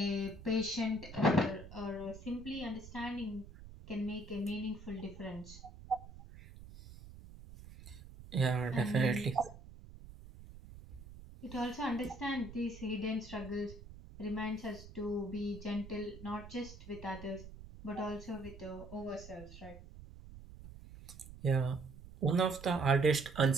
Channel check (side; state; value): right; noise; rumble, 16 dB below the sound